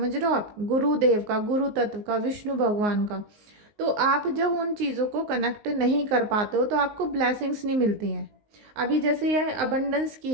रहे हो आप, गुरुदेव का, गुरु तत्व का, विष्णु भगवान का। तो आप जब उन चीज़ों को कनेक्ट नहीं कर पाते हो तो आपको ब्लेसिंग्स नहीं मिलती हैं। अभी जैसे यह अबंडेंस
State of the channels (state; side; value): late; left; 19 ms